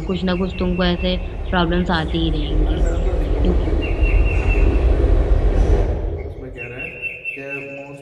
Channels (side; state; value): both; identical; correlation 1.00